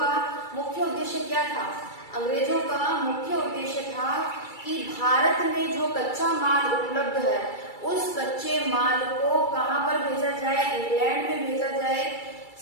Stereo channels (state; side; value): late; right; 2.3 ms